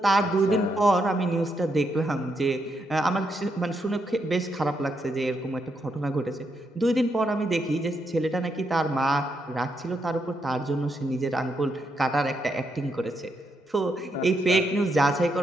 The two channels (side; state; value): both; normal; correlation 0.79